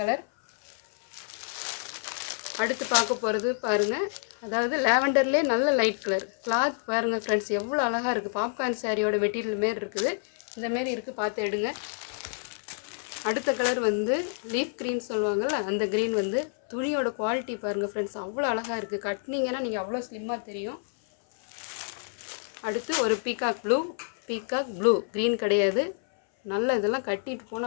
அடுத்து பார்க்க போகிறது பாருங்கள், அதாவது லாவெண்டர்லேயே நல்ல லைட் கலர். கிளாத் பாருங்கள் ஃப்ரெண்ட்ஸ், எவ்வளோ அழகாக இருக்குது. பாப்கார்ன் சாரியோட மெட்டீரியல் மாரி இருக்குது. இந்தமாரி இருக்குது, பார்த்து எடுங்க. அடுத்த கலர் வந்து லீஃப் க்ரீன் சொல்லுவாங்கள்ல, அந்த க்ரீன் வந்து துணியோட குவாலிட்டி பாருங்கள் ஃப்ரெண்ட்ஸ், அவ்வளோ அழகாக இருக்குது. கட்டினீங்கன்னா நீங்கள் அவ்வளோ ஸ்லிம்மாக தெரியும். அடுத்து ஒரு பீகாக் ப்ளூ க்ரீன் கிடையாது. நல்ல இதெல்லாம் கட்டிட்டு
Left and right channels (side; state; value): right; silent; 58 dB below the other